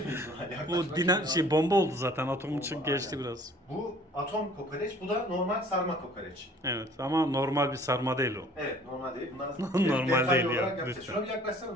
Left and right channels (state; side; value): normal; both; correlation 0.53